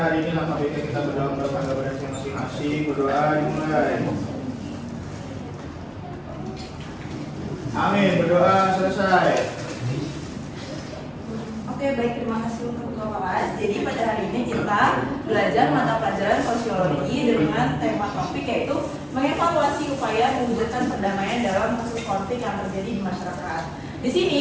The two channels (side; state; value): both; identical; correlation 1.00